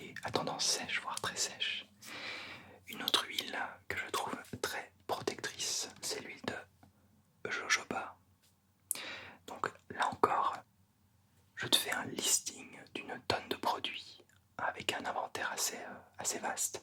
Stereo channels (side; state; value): both; identical; correlation 1.00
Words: à tendance sèche, voire très sèche. Une autre huile que je trouve très protectrice, c'est l'huile de jojoba. Donc là encore, je te fais un listing d'une tonne de produits avec un inventaire assez